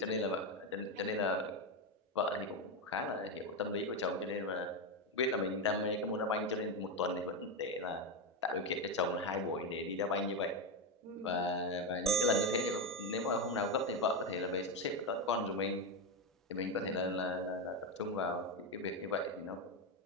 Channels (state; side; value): normal; both; correlation 0.10